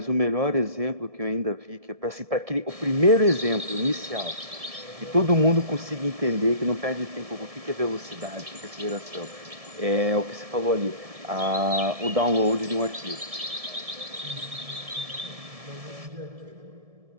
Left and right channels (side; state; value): left; late; 1.7 ms